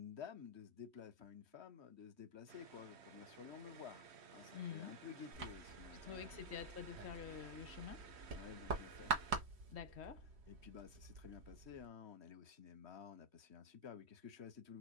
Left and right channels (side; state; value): left; late; 3.1 ms